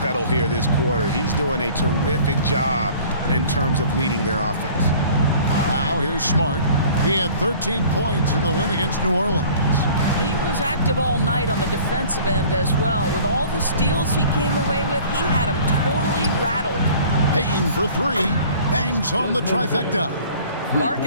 pedal here this quarter. He's doing a terrific job in terms of leading their offense. Now here's Smart. He had 13 points in the win against New Orleans. He was active all night on the defensive end as well. With all the steals he came away with, he had him totally rattled. Bain for 3. Bangs home the trifecta.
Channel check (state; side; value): inverted; both; correlation -0.48